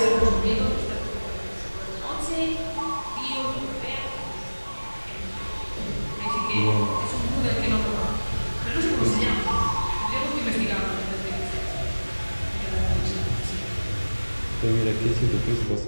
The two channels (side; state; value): both; inverted; correlation -1.00